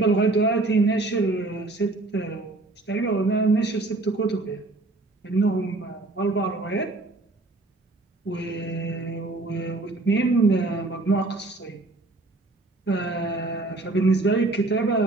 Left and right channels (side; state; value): left; quieter; 3.1 dB